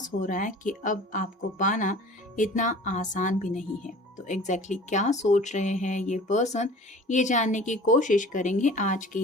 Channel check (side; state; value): both; normal; correlation 0.44